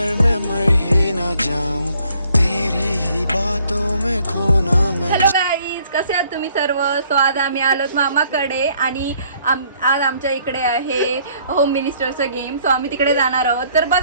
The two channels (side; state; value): both; inverted; correlation -0.64